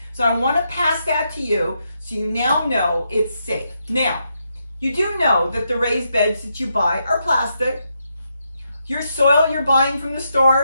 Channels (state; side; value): inverted; both; correlation -0.81